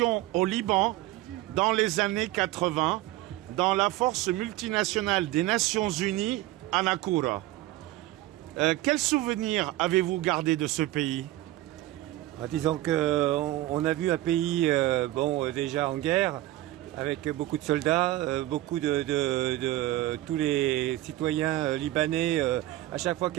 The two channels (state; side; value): quieter; left; 16.3 dB